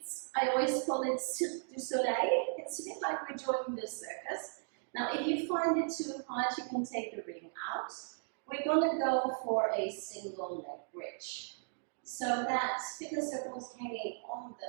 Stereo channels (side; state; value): left; silent; digital silence